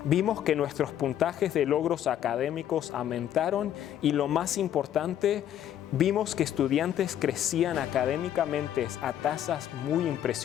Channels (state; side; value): quieter; right; 10.8 dB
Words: vimos que nuestros puntajes de logros académicos aumentaron y lo más importante vimos que estudiantes crecían académicamente a tasas muy